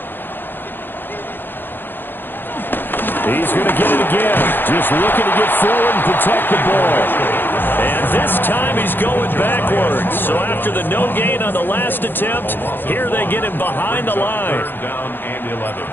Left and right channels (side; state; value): right; late; 0.097 ms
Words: He's going to get it again. Just looking to get forward and protect the ball. And this time he's going backwards. So after the no gain on the last attempt, here they get him behind the line. 3rd down and 11.